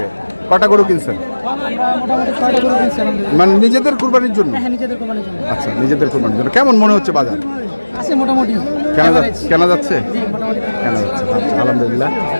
কটা গরু কিনছেন মানে নিজেদের কুরবানির জন্য আচ্ছা নিজেদের কুরবানির জন্য কেমন মনে হচ্ছে বাজার মোটামুটি কেনা যাচ্ছে আচ্ছা, আলহামদুলিল্লাহ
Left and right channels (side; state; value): both; inverted; correlation -1.00